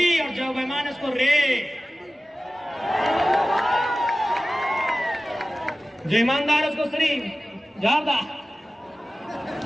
और जो बेईमान है उसको रे। जो ईमानदार है उसको श्री जारदा।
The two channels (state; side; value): normal; both; correlation 0.96